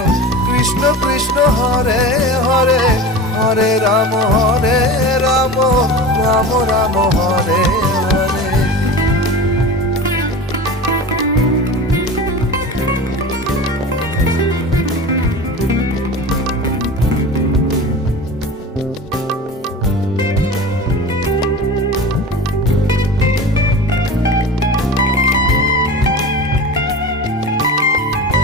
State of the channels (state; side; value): normal; both; correlation 0.33